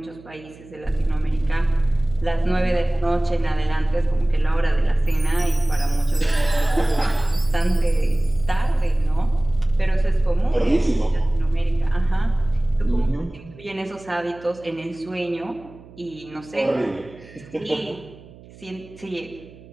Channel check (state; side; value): noise; right; hum, 21 dB below the sound